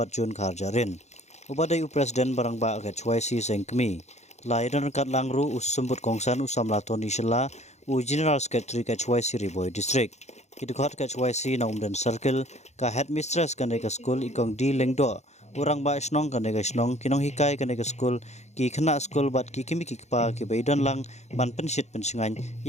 Jun Karjarin ubadai presiden barang ba ka HYC sengkmi lai dan kat langru usumbut kongsan usam latoni shela u General Secretary ka HYC Riboy District Kidukhat ka HYC na umdan circle ka headmistress ka nega school ikong di lengdo urang ba snong ka nega snong kinong hikai ka nega school ki khana school bat ki kimi ki pa ki baidan lang ban pensit pensingan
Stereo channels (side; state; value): right; late; 0.33 ms